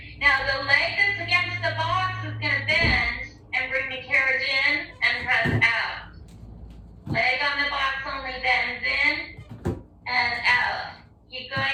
Now the leg that's against the box is going to bend and bring the carriage in and press out. Leg on the box only bends in and out. Keep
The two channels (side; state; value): both; identical; correlation 1.00